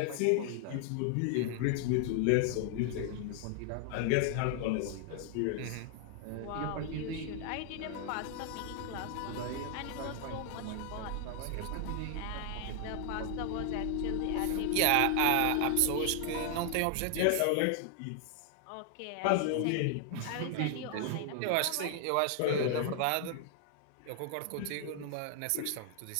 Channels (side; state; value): both; different; correlation 0.00